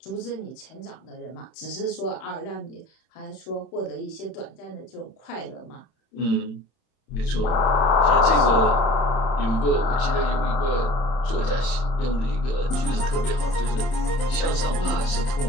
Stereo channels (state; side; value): late; right; 31 ms